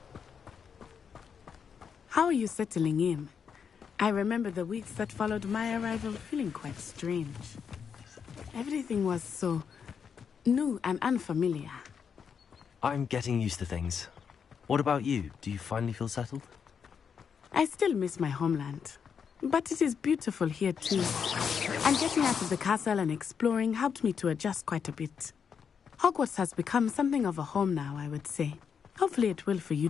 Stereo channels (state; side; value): quieter; right; 6.8 dB